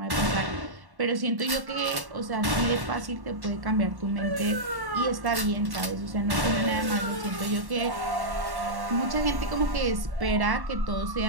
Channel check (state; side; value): late; left; 1.1 ms